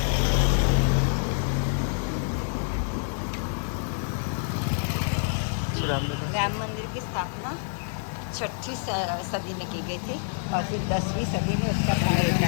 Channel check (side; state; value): right; silent; 60 dB below the other